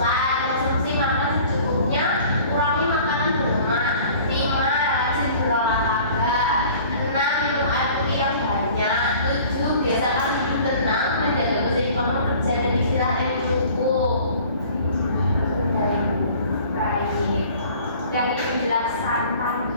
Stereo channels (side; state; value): both; inverted; correlation -0.48